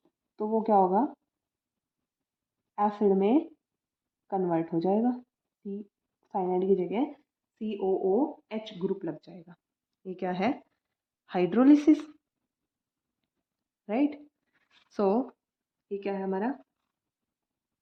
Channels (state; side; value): identical; both; correlation 1.00